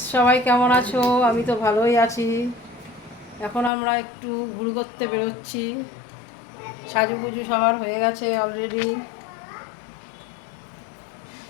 সবাই কেমন আছো? আমি তো ভালোই আছি। এখন আমরা একটু ঘুরে করতে বেরোচ্ছি। সাজুগুজু সবার হয়ে গেছে অলরেডি।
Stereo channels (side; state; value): right; drops out; at 3.7 s